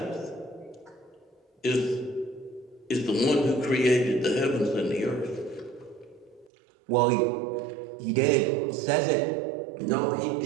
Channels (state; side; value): drops out; left; at 6.5 s